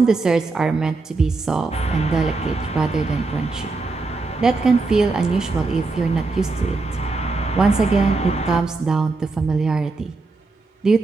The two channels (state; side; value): quieter; left; 3.7 dB